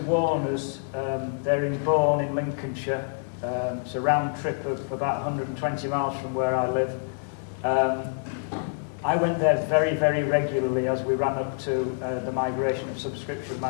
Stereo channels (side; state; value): right; silent; 60 dB below the other